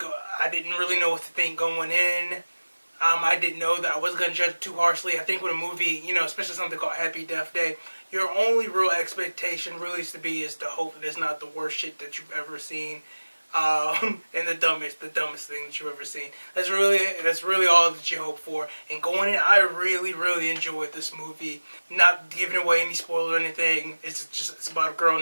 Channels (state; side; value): inverted; both; correlation -1.00